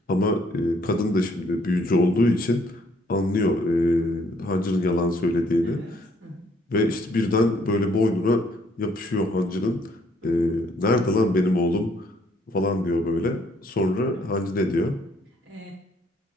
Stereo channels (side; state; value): both; normal; correlation 0.65